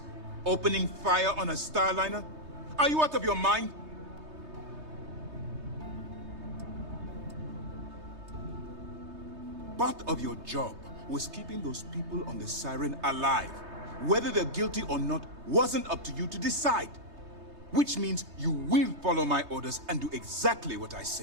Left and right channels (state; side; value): late; left; 3.2 ms